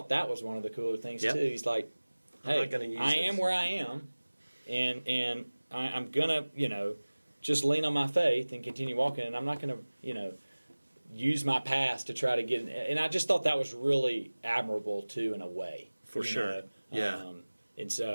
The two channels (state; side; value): inverted; both; correlation -1.00